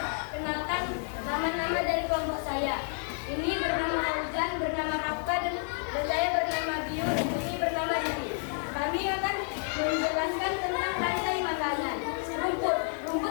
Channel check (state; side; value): silent; right; 58 dB below the other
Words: nama-nama dari kelompok saya. Ini bernama Fauzan, bernama Rafka, dan saya bernama Biu, dan ini bernama Riri. Kami akan menjelaskan tentang rantai makanan.